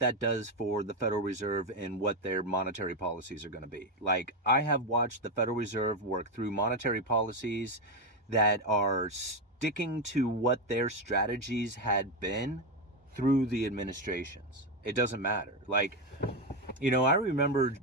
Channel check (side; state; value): both; normal; correlation 0.09